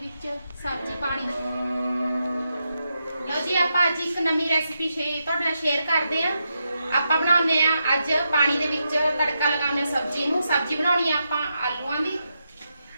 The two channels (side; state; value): both; inverted; correlation -0.84